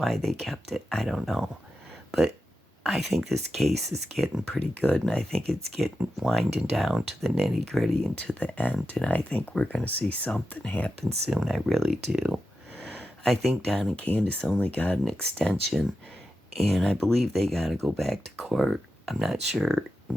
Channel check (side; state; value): both; normal; correlation 0.90